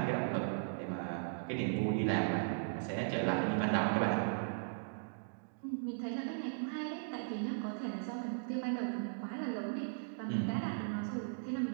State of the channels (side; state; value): left; silent; digital silence